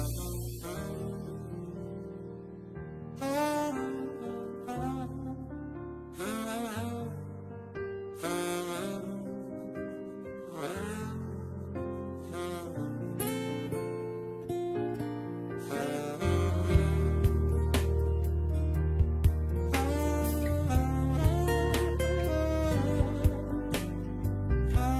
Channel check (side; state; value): both; identical; correlation 1.00